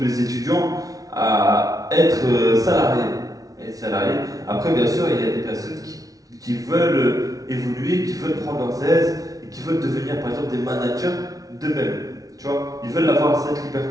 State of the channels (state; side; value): late; left; 0.18 ms